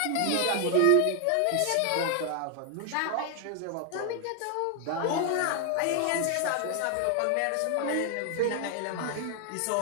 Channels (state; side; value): different; both; correlation 0.00